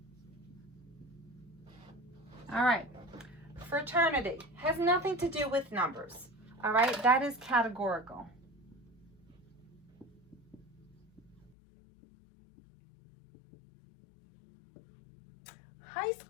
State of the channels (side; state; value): right; drops out; at 11.5 s